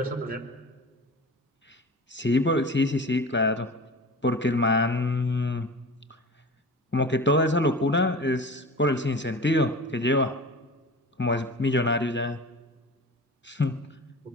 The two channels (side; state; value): both; normal; correlation 0.36